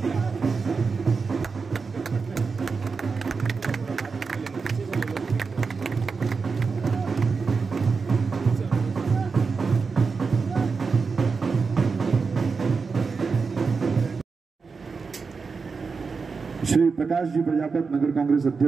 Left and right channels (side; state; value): left; quieter; 4.9 dB